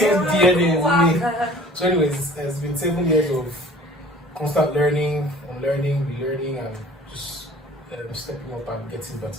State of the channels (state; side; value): normal; both; correlation 0.48